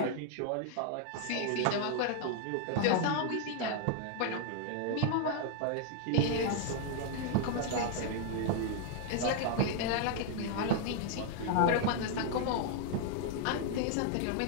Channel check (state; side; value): different; both; correlation 0.00